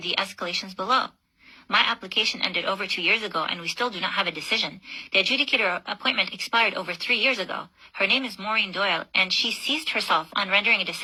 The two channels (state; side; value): identical; both; correlation 1.00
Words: escalations below. My application ended over 2 years ago, and we still do not have a decision. The adjudicator appointment expired over 3 years ago. Her name is Maureen Doyle, and she seized herself on rendering a